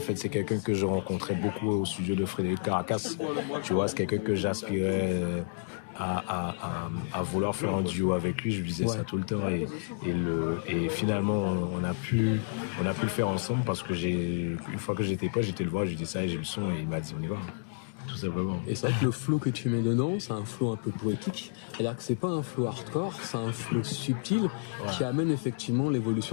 c'est quelqu'un que je rencontrais beaucoup au studio de Frédéric Caracas, tu vois, c'est quelqu'un que j'aspirais à vouloir faire un duo avec lui, je lui disais ça tout le temps et finalement on a pu le faire ensemble parce que une fois que j'étais le voir, j'ai dit ça et j'ai le son et il m'a dit on y va. Tout simplement. Et c'est vrai que le flow que tu mets dedans, c'est un flow un peu poétique. C'est-à-dire que c'est pas un flow hardcore, c'est un flow subtil qui amène effectivement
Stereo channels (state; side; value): silent; right; digital silence